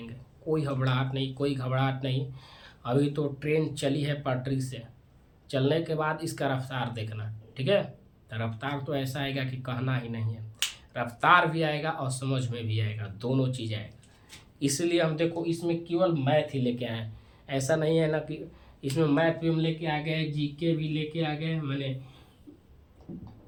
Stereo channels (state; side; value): identical; both; correlation 1.00